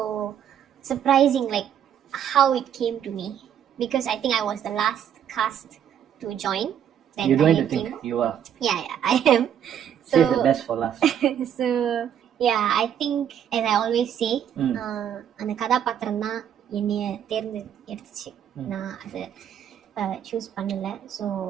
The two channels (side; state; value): left; quieter; 9.3 dB